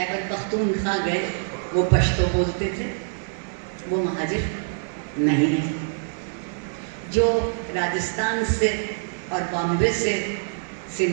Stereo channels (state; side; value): silent; left; digital silence